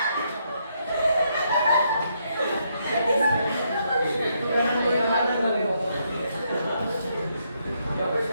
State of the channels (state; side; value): inverted; both; correlation -0.76